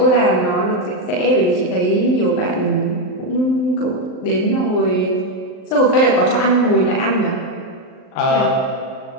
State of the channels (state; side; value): late; right; 39 ms